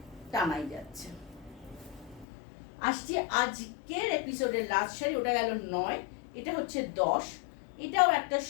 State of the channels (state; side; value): drops out; right; at 2.2 s